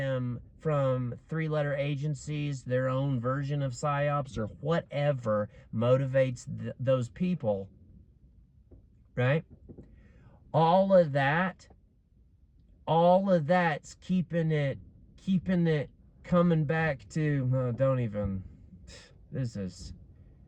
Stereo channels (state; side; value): identical; both; correlation 1.00